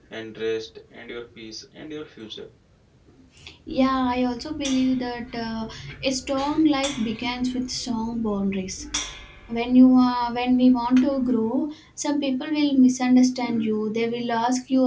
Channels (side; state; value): both; identical; correlation 1.00